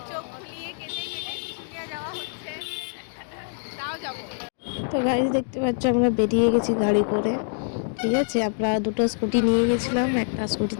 চোখ ফুলিয়ে কেটে কেটে শুশুনিয়া যাওয়া হচ্ছে। তাও যাবো। তো গাইজ দেখতে পাচ্ছ আমরা বেরিয়ে গেছি গাড়ি করে, ঠিক আছে। আমরা দুটো স্কুটি নিয়ে গেছিলাম, একটা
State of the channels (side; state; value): right; silent; digital silence